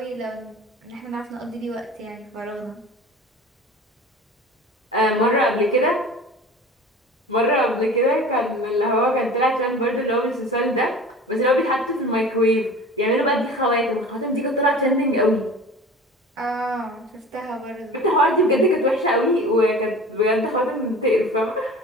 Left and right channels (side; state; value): both; normal; correlation 0.39